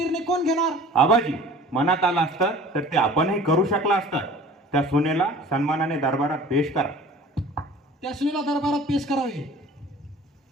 कोण घेणार? आबाजी, मनात आलं असतं तर ते आपणही करू शकला असतं. त्या सुनेला सन्मानाने दरबारात पेश करा. त्या सुनेला दरबारात पेश करावे.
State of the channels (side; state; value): both; normal; correlation 0.45